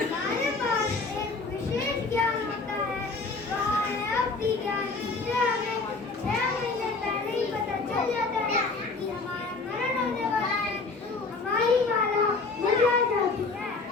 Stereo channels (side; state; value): right; quieter; 3.9 dB